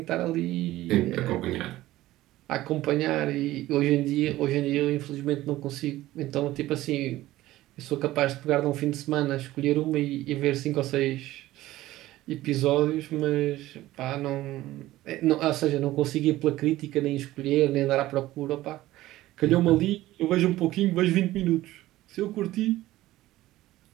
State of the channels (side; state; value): left; quieter; 16.1 dB